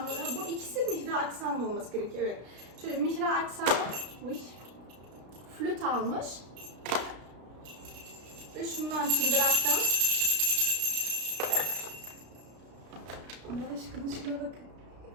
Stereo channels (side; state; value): left; late; 33 ms